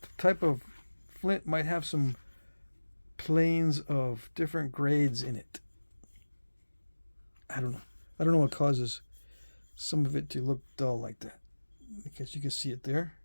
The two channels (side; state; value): both; inverted; correlation -1.00